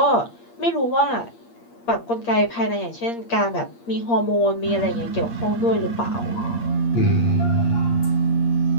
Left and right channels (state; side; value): late; right; 8.5 ms